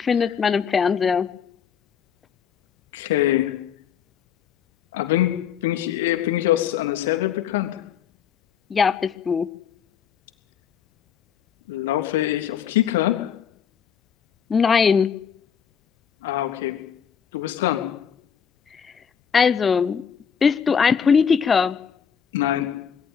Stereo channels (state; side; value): quieter; right; 7.5 dB